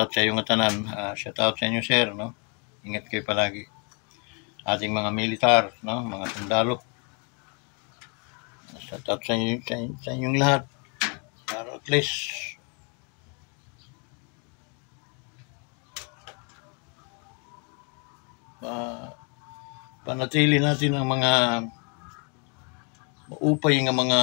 sa iyong tanan. Shoutout sa inyo, sir, no? Ingat kayo palagi. Ating mga militar, no? Mga sundalo. Shoutout sa inyong lahat. Para at least panatili natin ang mga maupay ng mga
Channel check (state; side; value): quieter; right; 36.3 dB